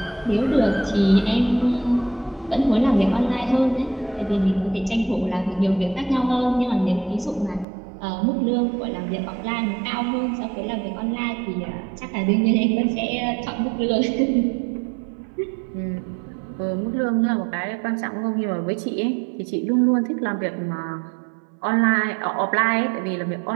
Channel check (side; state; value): left; drops out; at 7.7 s